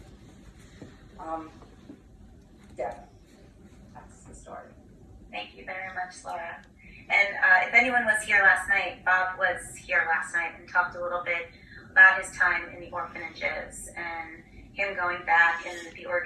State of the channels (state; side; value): identical; both; correlation 1.00